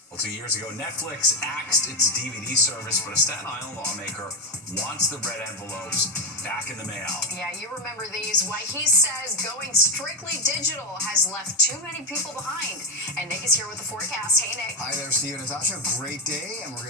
Well, 2 years ago, Netflix axed its DVD service, but a Staten Island lawmaker wants the red envelopes back in the mail. Yeah, you remember these. Why he says going strictly digital has left too many people behind. And Nick is here with the forecast. Hey, Nick. Hi there, Steve and Natasha. Great day, and we're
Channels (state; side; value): normal; both; correlation 0.10